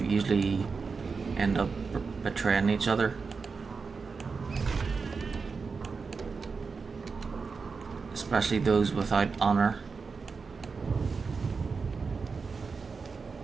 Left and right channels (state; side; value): quieter; left; 4.9 dB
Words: usually end up betraying each other. Especially those without honor.